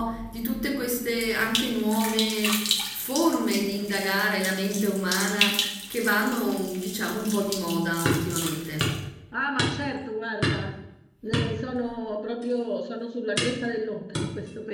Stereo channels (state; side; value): identical; both; correlation 1.00